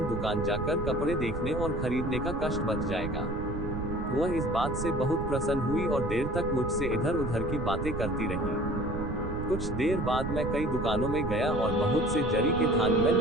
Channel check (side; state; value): right; noise; rumble, 5 dB below the sound